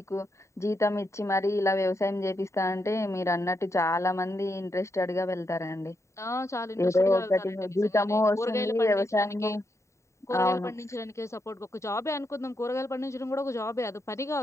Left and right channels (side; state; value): right; late; 0.14 ms